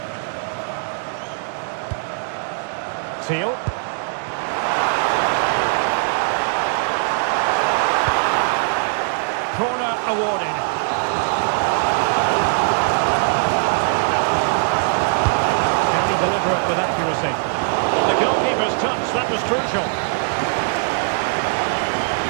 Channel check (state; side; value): silent; left; digital silence